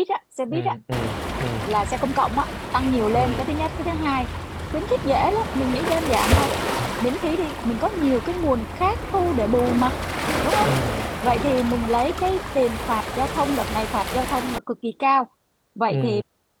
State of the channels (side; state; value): both; identical; correlation 1.00